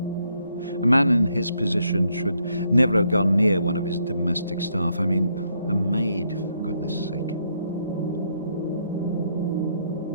A man in his position should never have gone near one of his domestic staff. I mean, a maid, for goodness sake.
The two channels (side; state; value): both; inverted; correlation -0.74